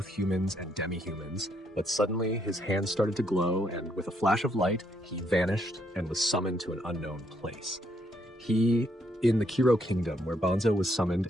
humans and demi-humans, but suddenly his hands started to glow, and with a flash of light, he vanished and was summoned to an unknown place. In the Kiro Kingdom, where Banzo was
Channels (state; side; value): normal; both; correlation 0.73